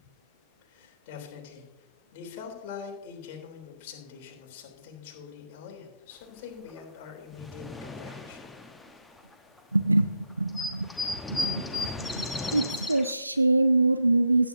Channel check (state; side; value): inverted; both; correlation -0.78